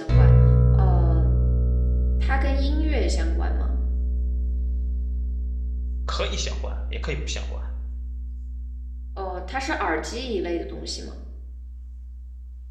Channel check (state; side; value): identical; both; correlation 1.00